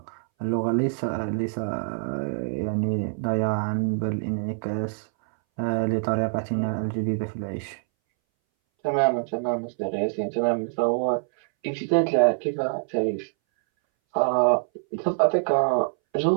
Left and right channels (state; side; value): silent; left; 61 dB below the other